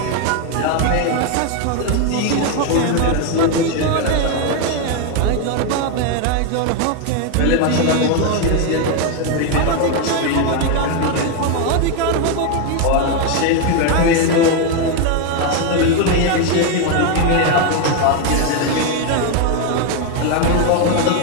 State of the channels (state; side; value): different; both; correlation 0.01